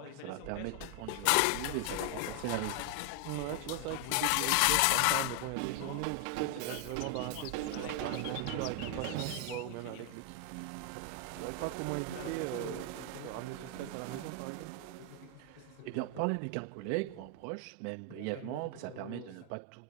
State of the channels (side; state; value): both; different; correlation 0.00